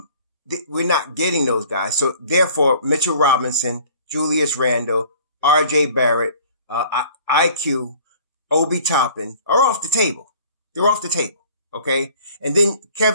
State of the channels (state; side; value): inverted; both; correlation -0.51